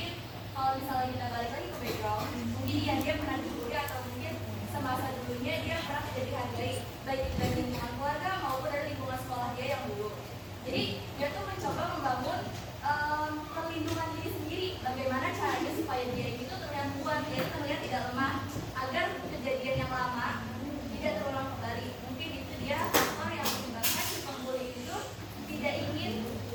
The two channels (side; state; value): both; identical; correlation 1.00